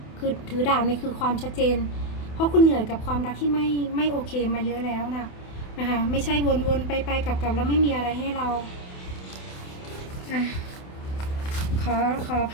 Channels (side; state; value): right; late; 28 ms